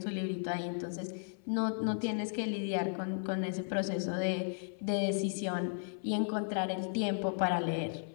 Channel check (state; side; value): silent; right; 54 dB below the other